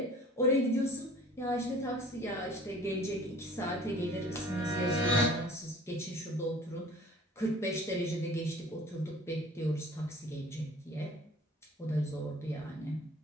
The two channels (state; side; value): normal; both; correlation 0.48